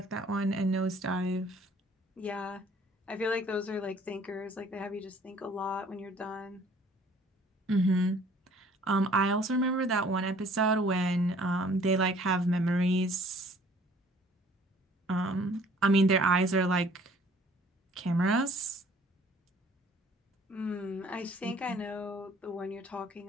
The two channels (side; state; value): both; normal; correlation 0.55